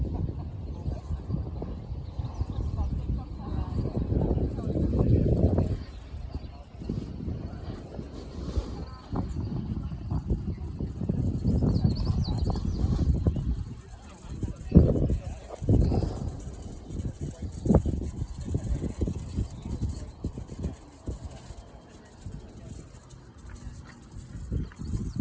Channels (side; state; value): both; identical; correlation 1.00